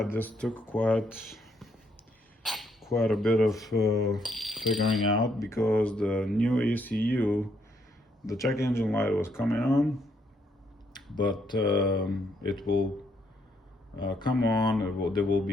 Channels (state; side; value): normal; both; correlation 0.73